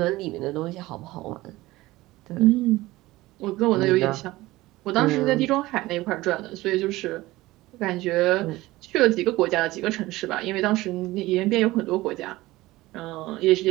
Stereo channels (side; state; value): left; quieter; 18.6 dB